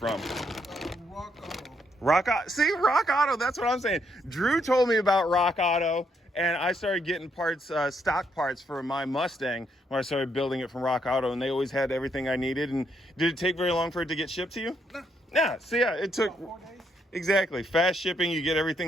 Rock Auto. Rock Auto. See, Rock Auto, that's what I'm saying. Drew told me about Rock Auto, and I started getting parts, stock parts for my Mustang when I started building it from Rock Auto, and they always had everything I needed. And did it take very long for it to get shipped to you? No. Yeah, so yeah, it took... About 4 days. Exactly. Fast shipping, you get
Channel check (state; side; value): normal; both; correlation 0.75